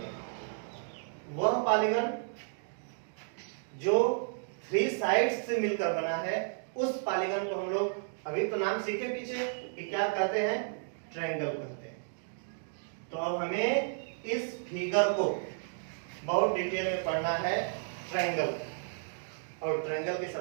वह पॉलीगन जो 3 साइड्स से मिलकर बना है उस पॉलीगन को हम लोग अभी तो नाम सीखे पीछे कि क्या कहते हैं, ट्रायंगल कहते हैं। तो अब हमें इस फिगर को बहुत डिटेल में पढ़ना है, ट्रायंगल। और ट्रायंगल की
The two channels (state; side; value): silent; left; digital silence